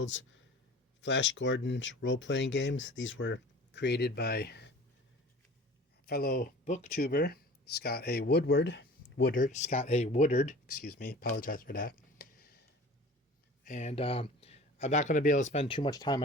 Flash Gordon's role playing games. These were created by fellow booktuber Scott A. Woodard, excuse me, apologize for that. And I'm not going to be able to spend too much time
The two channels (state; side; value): normal; both; correlation 0.42